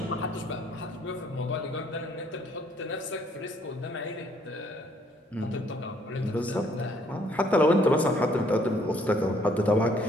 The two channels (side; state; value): both; normal; correlation 0.64